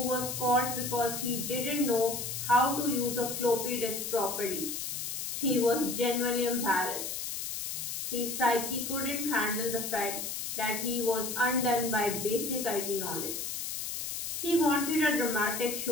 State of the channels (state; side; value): noise; left; hiss, 4 dB below the sound